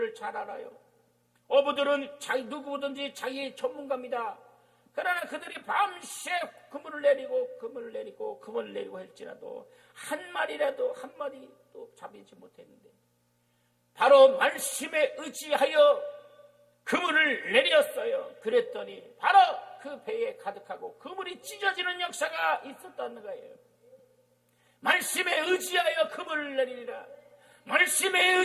잘 알아요. 어부들은 누구든지 자기의 전문가입니다. 그러나 그들이 밤새 그물을 내리고 할지라도 한 마리도 잡히지 못했는데, 바로 말씀에 의지하여 그물을 내렸어요. 그랬더니 바로 그 배에 가득하고 그물이 찢어지는 역사가 있었다는 거예요. 말씀에 의지하여 그물을 내리리라. 말씀에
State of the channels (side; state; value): both; identical; correlation 1.00